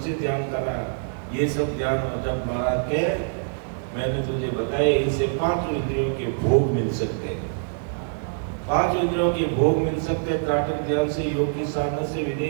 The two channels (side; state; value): left; silent; digital silence